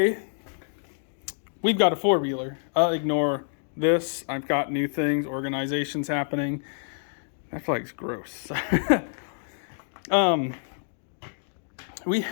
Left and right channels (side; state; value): right; silent; digital silence